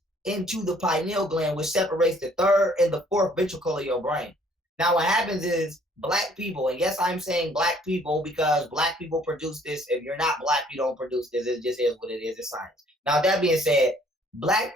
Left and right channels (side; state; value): both; normal; correlation 0.60